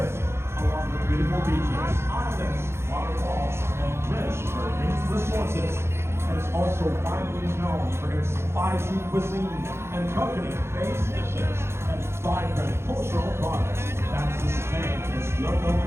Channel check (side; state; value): left; late; 0.12 ms